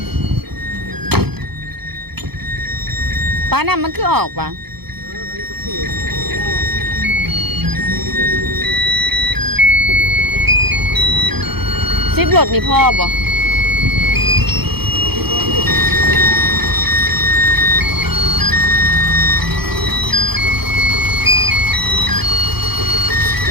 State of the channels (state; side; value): late; left; 0.97 ms